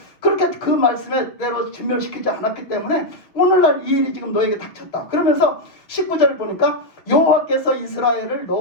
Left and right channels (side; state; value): right; late; 5.9 ms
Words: 그렇게 그 말씀대로 진멸시키지 않았기 때문에 오늘날 이 일이 지금 너에게 닥쳤다. 그러면서 19절을 보니까 여호와께서 이스라엘을